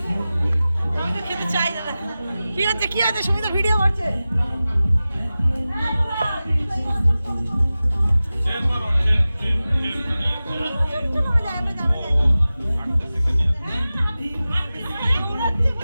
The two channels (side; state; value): both; inverted; correlation -0.96